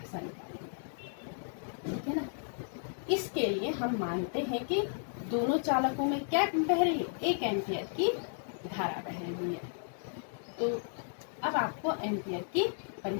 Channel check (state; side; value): silent; right; digital silence